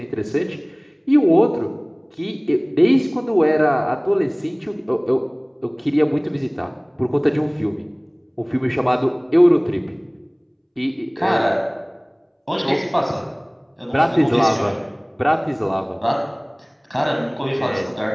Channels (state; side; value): identical; both; correlation 1.00